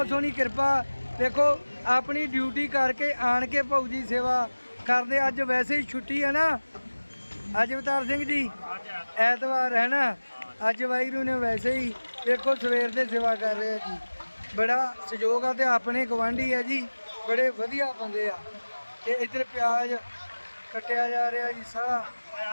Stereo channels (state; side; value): inverted; both; correlation -1.00